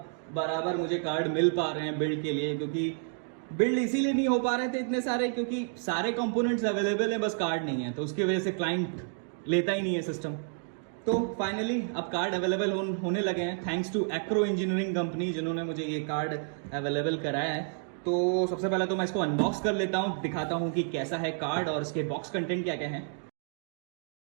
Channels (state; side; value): silent; left; 58 dB below the other